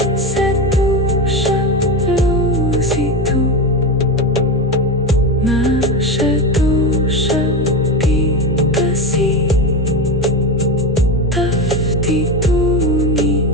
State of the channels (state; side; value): normal; both; correlation 0.19